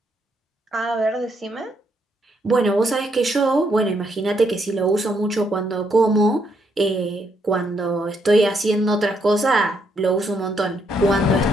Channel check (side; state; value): both; normal; correlation 0.75